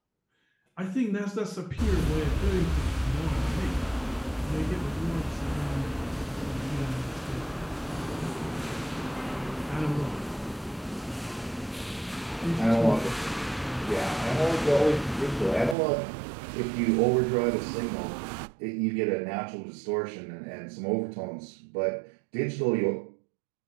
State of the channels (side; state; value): left; drops out; at 15.8 s